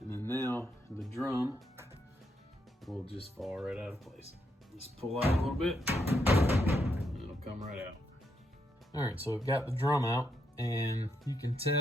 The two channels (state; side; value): normal; both; correlation 0.79